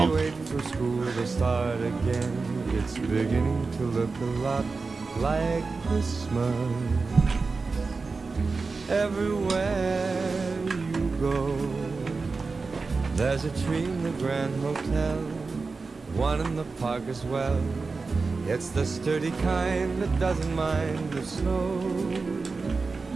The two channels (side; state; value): left; quieter; 4.2 dB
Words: It's beginning to look a lot like Christmas. Everywhere you go, there's a tree in the Grand Hotel, one in the park as well. It's the sturdy kind that doesn't mind the snow.